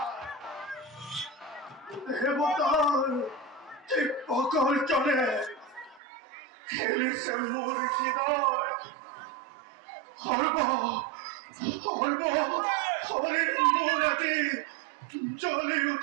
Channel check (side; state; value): left; drops out; at 6.0 s